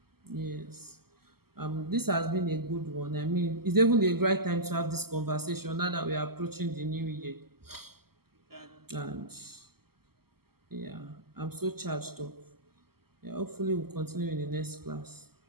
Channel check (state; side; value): late; left; 0.95 ms